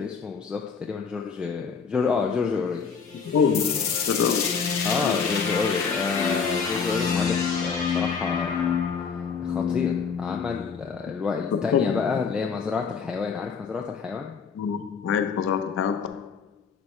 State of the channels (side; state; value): right; quieter; 5.9 dB